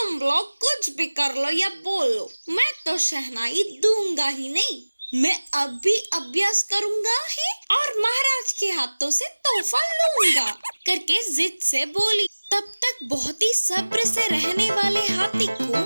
लोग कुछ भी कर लो या बोलो, मैं तो शहनाई दूंगा ही नहीं। मैं अब भी अभ्यास करूंगा ही और महाराज के हाथों से तोहफा लूंगा करके जिद से बोली। तब तक बहुत ही सब्र से रहने वाले हाथी को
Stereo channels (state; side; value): inverted; both; correlation -1.00